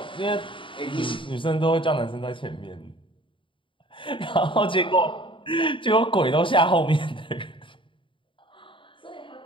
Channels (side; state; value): right; late; 0.25 ms